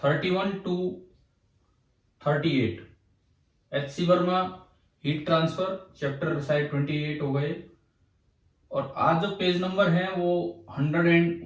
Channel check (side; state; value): both; identical; correlation 1.00